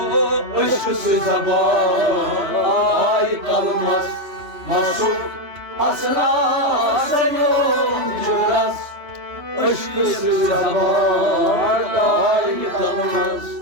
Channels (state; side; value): late; left; 3.0 ms